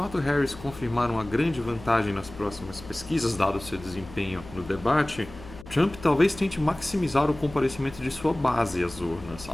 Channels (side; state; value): left; noise; hum, 16 dB below the sound